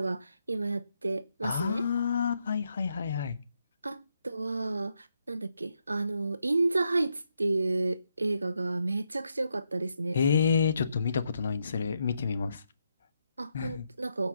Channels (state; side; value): inverted; both; correlation -0.80